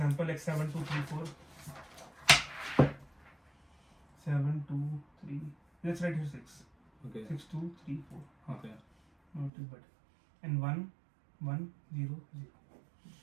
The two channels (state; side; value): drops out; left; at 9.5 s